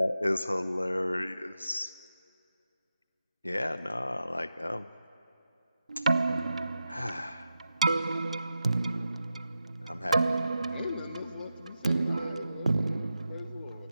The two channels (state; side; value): inverted; both; correlation -0.90